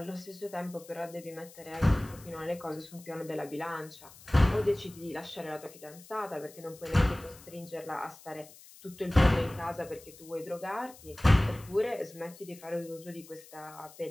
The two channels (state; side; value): noise; left; hiss, 20 dB below the sound